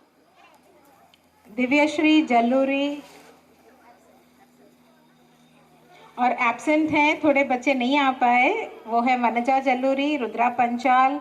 दिव्यश्री जल्लूरी और एब्सेंट हैं, थोड़े बच्चे नहीं आ पाए, वो है वनजा जल्लूरी, रुद्रा पंचाल,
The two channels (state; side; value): identical; both; correlation 1.00